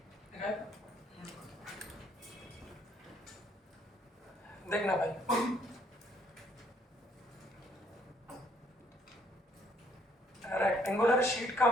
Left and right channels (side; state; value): both; normal; correlation 0.66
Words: लिखा है? देखना भाई, रेक्टेंगुलर शीट का